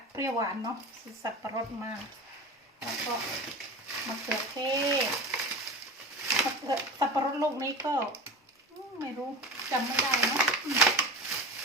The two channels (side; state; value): both; normal; correlation 0.30